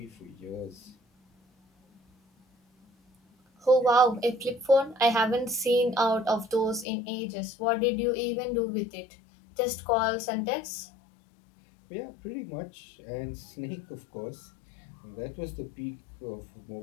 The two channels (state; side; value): drops out; right; at 6.9 s